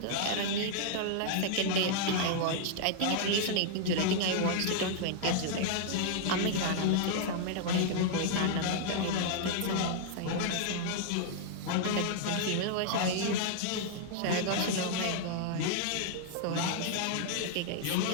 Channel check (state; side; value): different; both; correlation -0.01